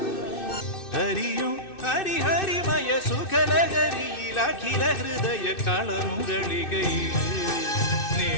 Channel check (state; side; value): late; right; 2.6 ms